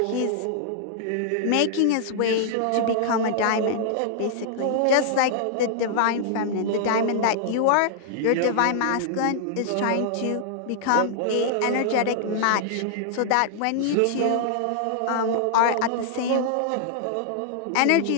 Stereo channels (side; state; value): both; different; correlation -0.01